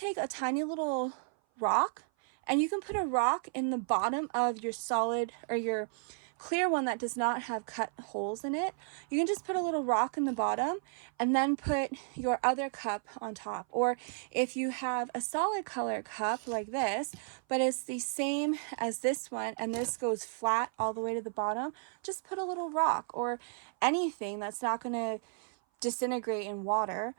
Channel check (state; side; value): silent; left; 56 dB below the other